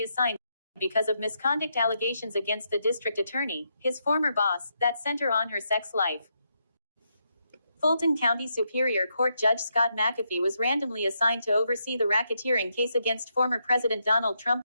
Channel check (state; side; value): inverted; both; correlation -0.80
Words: because of misconduct allegations against the district attorney, his former boss, that center on her sex life. Fulton County Superior Court Judge Scott McAfee was randomly assigned to oversee the racketeering case against former President Donald Trump